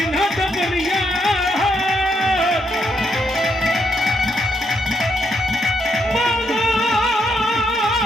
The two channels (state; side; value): normal; both; correlation 0.77